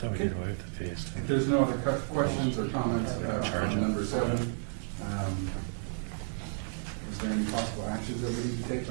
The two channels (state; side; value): silent; left; digital silence